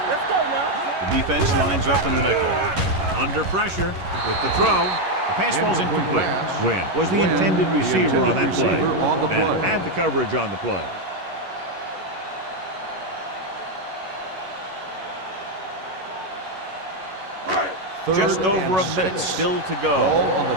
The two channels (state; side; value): late; left; 11 ms